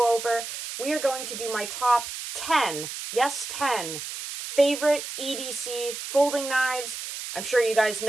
over. We are going to do my top 10, yes 10, favorite EDC folding knives. I'm sure you guys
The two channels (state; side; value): noise; right; hiss, 8 dB below the sound